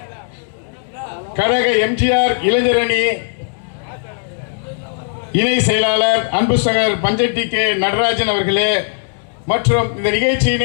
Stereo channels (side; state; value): right; silent; digital silence